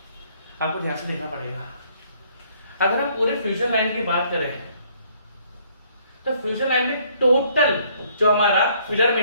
आपको ध्यान से देखना पड़ेगा। अगर हम पूरे फ्यूजन लाइन की बात करें तो फ्यूजन लाइन में टोटल जो हमारा फिलर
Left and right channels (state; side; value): inverted; both; correlation -0.64